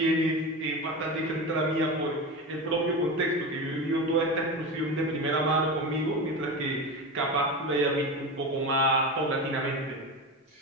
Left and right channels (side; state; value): both; normal; correlation 0.23